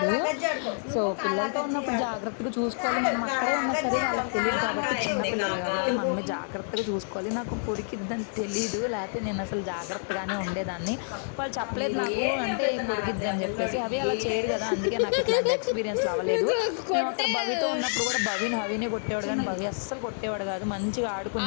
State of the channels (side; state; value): right; silent; 59 dB below the other